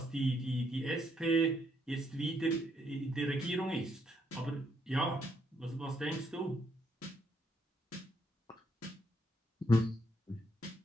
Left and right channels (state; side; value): normal; both; correlation 0.74